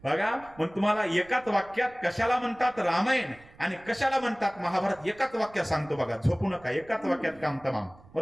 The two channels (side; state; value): right; noise; rumble, 25 dB below the sound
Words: बघा, मग तुम्हाला एकाच वाक्यात कशाला म्हणतात रामायण आणि कशाला म्हणतात महाभारत एकाच वाक्यात सांगतो बघा. झोपू नका, एकाच वाक्यात काम तमाम,